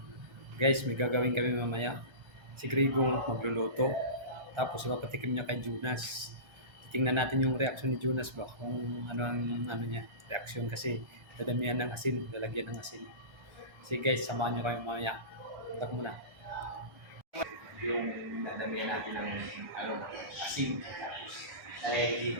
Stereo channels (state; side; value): late; left; 1.3 ms